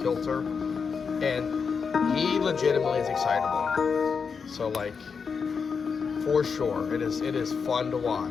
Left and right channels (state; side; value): quieter; right; 5.8 dB